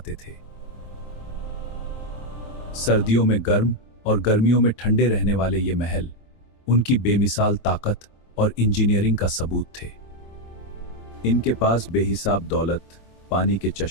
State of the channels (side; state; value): right; late; 25 ms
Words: थे। सर्दियों में गर्म और गर्मियों में ठंडे रहने वाले ये महल उनकी बेमिसाल ताकत और इंजीनियरिंग का सबूत थे। इनके पास बेहिसाब दौलत, पानी के